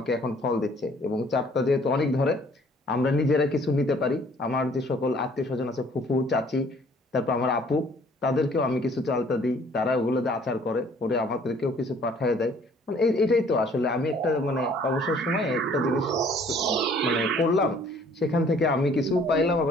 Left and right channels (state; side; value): normal; both; correlation 0.58